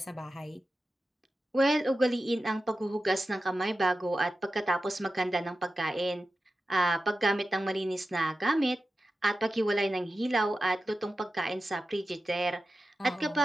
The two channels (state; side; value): normal; both; correlation 0.93